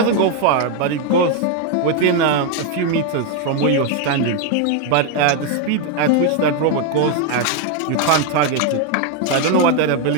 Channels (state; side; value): different; both; correlation 0.01